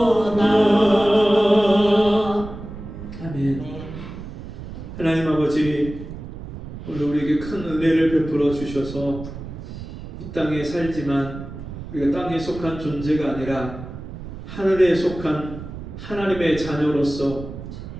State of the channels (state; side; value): noise; right; rumble, 11 dB below the sound